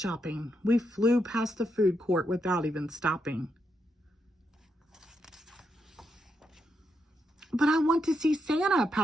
we flew past the food court without even stopping. "But I want to see Santa,"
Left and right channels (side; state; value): both; normal; correlation 0.82